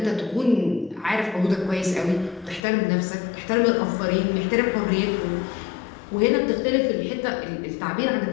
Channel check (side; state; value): right; drops out; at 2.6 s